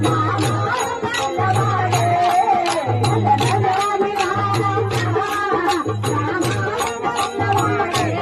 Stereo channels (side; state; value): both; identical; correlation 1.00